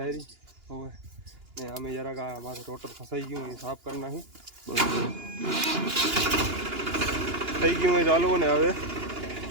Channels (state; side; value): late; left; 2.9 ms